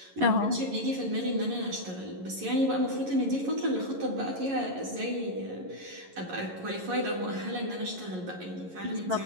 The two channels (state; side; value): late; left; 11 ms